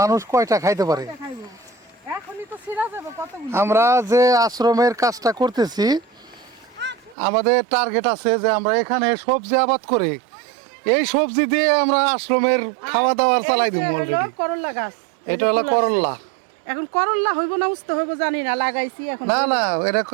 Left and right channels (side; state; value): left; drops out; at 7.2 s